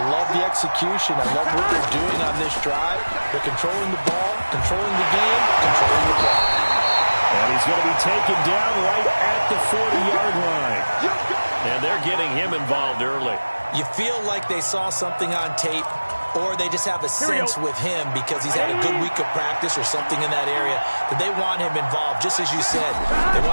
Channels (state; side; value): inverted; both; correlation -1.00